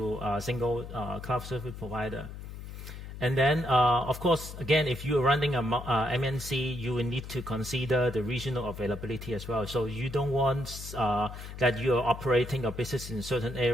a single cloud service provider. And then, of course, again, if you're running a MNC, you will need to consider the regional availability as well. So you don't want that you're operating a business in a certain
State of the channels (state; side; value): noise; left; hum, 11 dB below the sound